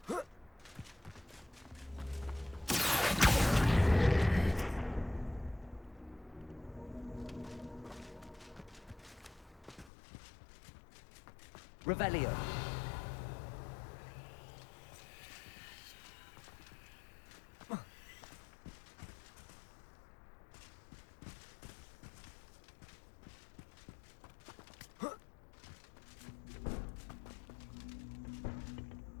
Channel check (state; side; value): drops out; right; at 9.9 s